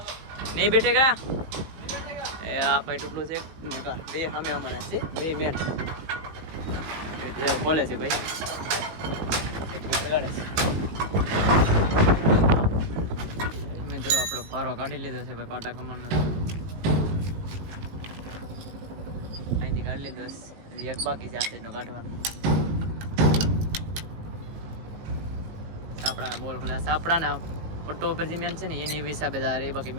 નહીં બેઠેગા. એ આ ભાઈ તૂટલું છે બે સામે અમારા છે, બે મેન ખોલે છે ભાઈ. મિત્રો આપણો પારો કાઢી લીધો છે ભાઈ પાટા કમાનો. અહીંથી કાઢી લીધો, એક બાકી છે આ સાઈડનો કાઢવાનો. સાપડાના બોલ ખોલ્યા, સાપડાના પટ્ટો ઉપર જે મેન છે ને એની હિસાબે એ બાકી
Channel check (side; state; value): left; late; 19 ms